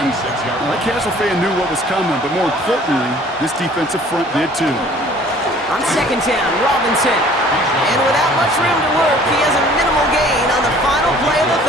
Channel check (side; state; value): right; noise; hum, 29 dB below the sound